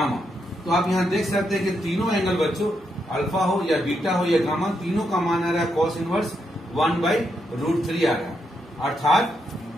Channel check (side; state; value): both; normal; correlation 0.81